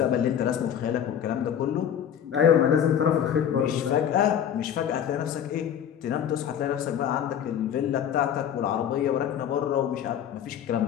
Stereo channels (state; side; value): quieter; right; 9.2 dB